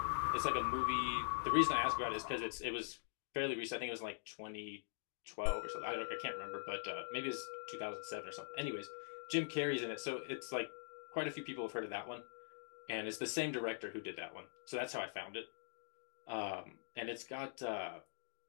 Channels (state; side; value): silent; right; digital silence